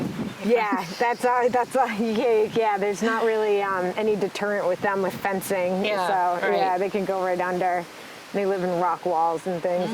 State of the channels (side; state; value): both; identical; correlation 1.00